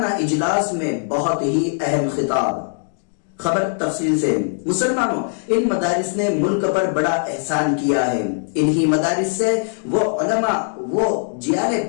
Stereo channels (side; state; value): right; silent; digital silence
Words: اجلاس میں بہت ہی اہم خطاب۔ خبر تفصیل سے۔ مسلمانوں، ان مدارس نے ملک پر بڑا احسان کیا ہے۔ انہی مدارس سے وہ علماء، وہ جیالے